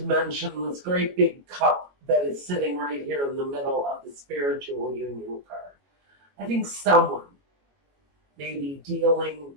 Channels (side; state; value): left; late; 22 ms